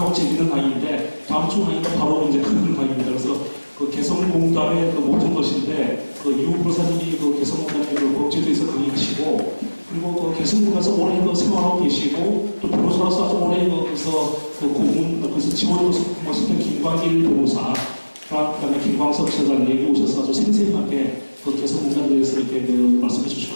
재밌는 강의인데 다음 주 강의가 바로 이제 큰 강의입니다. 그래서 개성공단의 모든 것인데 이후 변호사님이 개성공단의 법제도에서 강의하시고 그리고 개성공단에서 오래 생활하고 계시고 또 변호사로서 아주 오래 거기서 고문 그래서 지원으로 했던 김광길 변호사 그다음에 김광석 지사장님이 오셔서 아주 생생하게 개성공단에 대해서 이렇게 말씀해 주실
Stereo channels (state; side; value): inverted; both; correlation -1.00